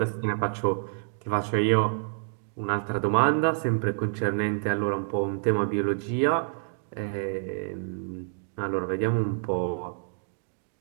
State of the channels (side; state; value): left; silent; digital silence